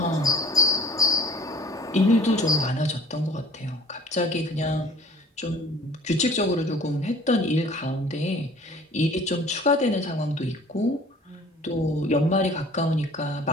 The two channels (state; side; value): normal; both; correlation 0.49